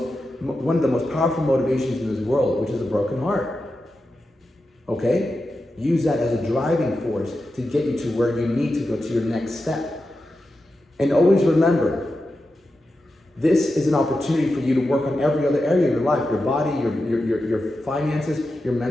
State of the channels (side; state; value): both; normal; correlation 0.90